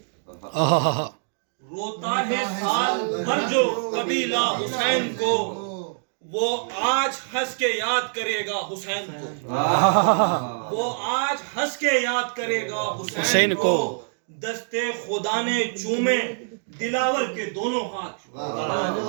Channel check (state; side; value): silent; left; 62 dB below the other